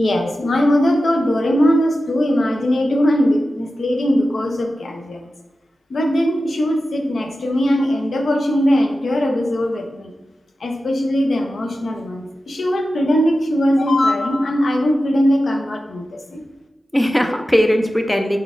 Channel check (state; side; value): normal; both; correlation 0.93